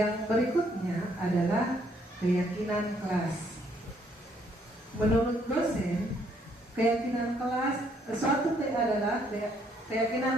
berikutnya adalah keyakinan kelas. Menurut dosen, keyakinan kelas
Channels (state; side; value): normal; both; correlation 0.68